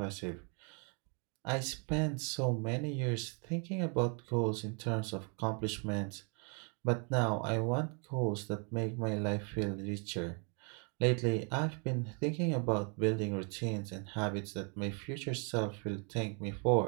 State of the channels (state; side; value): quieter; left; 37.0 dB